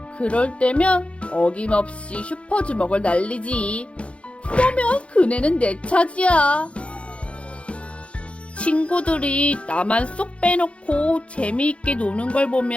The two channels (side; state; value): right; late; 0.061 ms